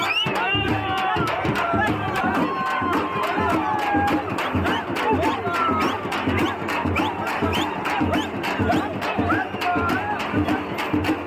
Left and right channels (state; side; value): identical; both; correlation 1.00